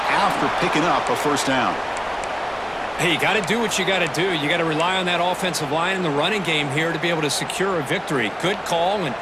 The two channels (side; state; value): both; identical; correlation 1.00